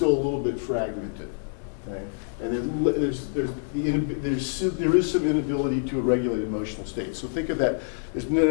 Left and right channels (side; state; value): right; silent; digital silence